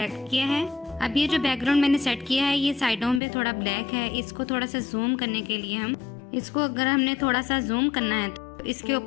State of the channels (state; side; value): drops out; right; at 3.2 s